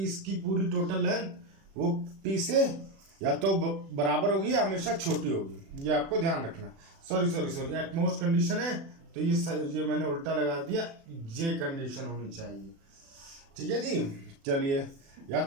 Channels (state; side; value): late; left; 36 ms